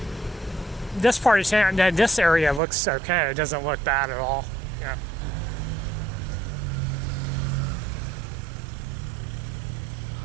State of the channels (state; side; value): drops out; left; at 2.6 s